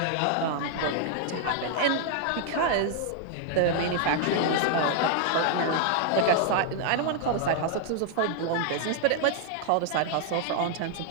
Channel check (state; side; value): different; both; correlation 0.00